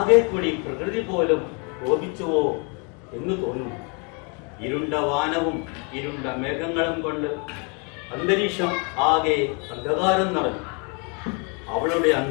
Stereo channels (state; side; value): quieter; right; 34.7 dB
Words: കൂടി പ്രകൃതി പോലും കോപിച്ചുവോ എന്ന് തോന്നുന്നു. ഇരുണ്ട വാനവും ഇരുണ്ട മേഘങ്ങളും കൊണ്ട് അന്തരീക്ഷം ആകെ അന്ധകാരം നിറഞ്ഞു. അവളുടെ